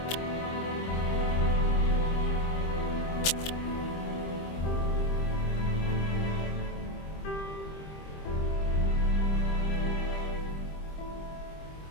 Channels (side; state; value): right; late; 25 ms